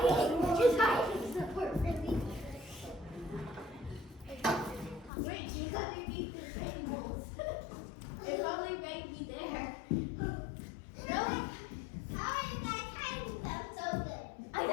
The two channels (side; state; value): right; drops out; at 5.1 s